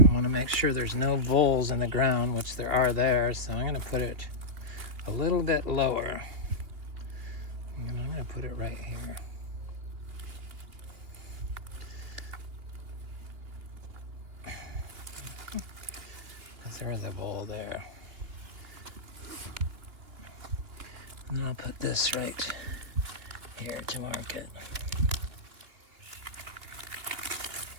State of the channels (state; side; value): late; left; 2.9 ms